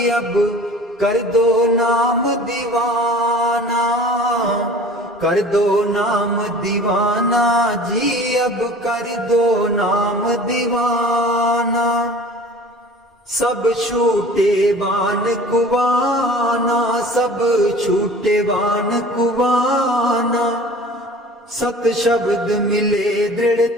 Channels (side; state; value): both; normal; correlation 0.44